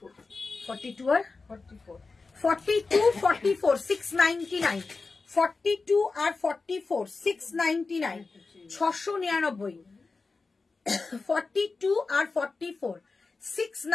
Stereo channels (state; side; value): quieter; right; 4.0 dB